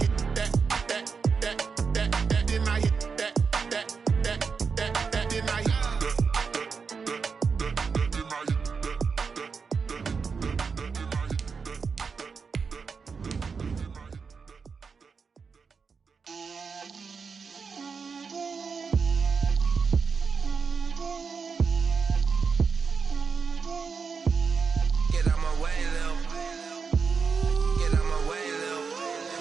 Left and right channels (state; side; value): quieter; left; 5.4 dB